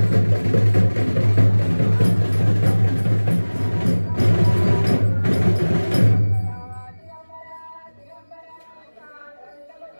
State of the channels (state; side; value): inverted; both; correlation -1.00